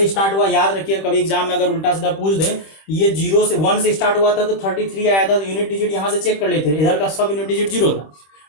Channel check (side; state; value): right; late; 26 ms